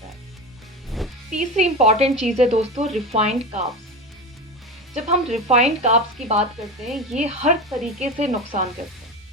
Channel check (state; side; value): normal; both; correlation 0.24